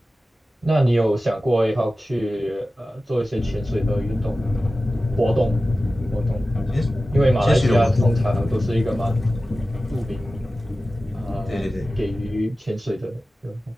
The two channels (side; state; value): both; normal; correlation 0.95